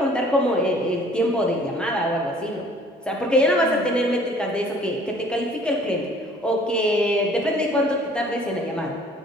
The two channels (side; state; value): both; normal; correlation 0.54